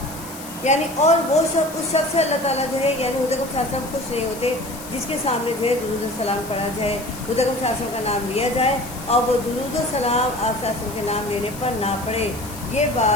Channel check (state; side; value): noise; left; hiss, 14 dB below the sound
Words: یعنی اور وہ شخص اس شخص سے اللہ تعالیٰ جو ہے یعنی حضرت صلی اللہ علیہ وسلم خوش نہیں ہوتے جس کے سامنے جو ہے درود و سلام پڑھا جائے، حضرت صلی اللہ علیہ وسلم کا نام لیا جائے اور وہ درود و سلام آپ صلی اللہ علیہ وسلم کے نام لینے پر نہ پڑھے۔ یہ